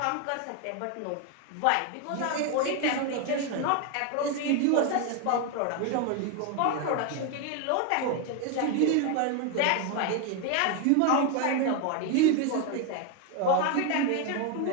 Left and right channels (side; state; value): both; different; correlation 0.01